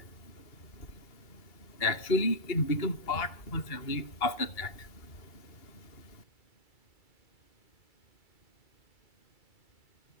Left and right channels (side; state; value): right; late; 2.3 ms